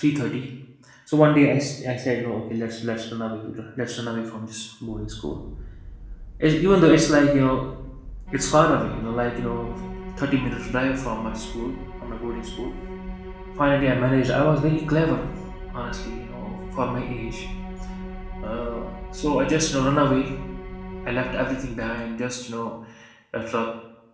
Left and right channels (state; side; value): identical; both; correlation 1.00